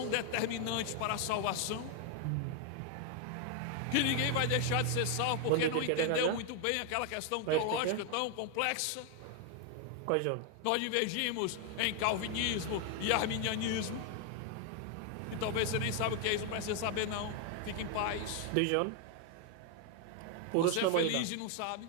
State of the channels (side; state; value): both; different; correlation 0.00